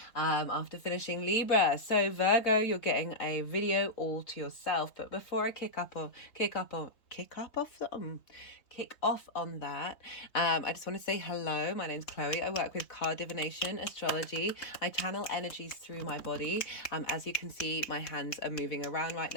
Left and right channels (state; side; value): late; right; 3.7 ms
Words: after finishing Libra. So Virgo, you're getting a video all to yourself. But before I kick off on that, I just want to say hello. My name's Chloe. I work with card divination, astrology. I channel energies through my body. As you can see, my hands are moving around right